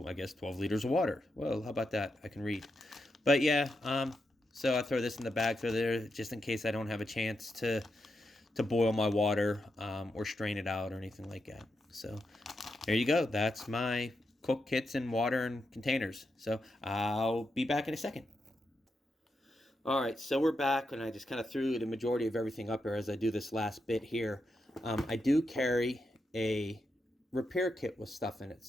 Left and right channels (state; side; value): normal; both; correlation 0.85